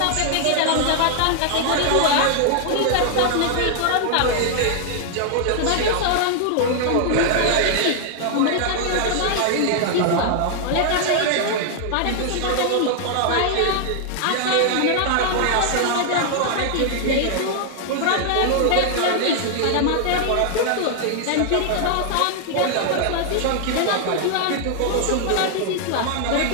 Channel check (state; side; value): different; both; correlation 0.00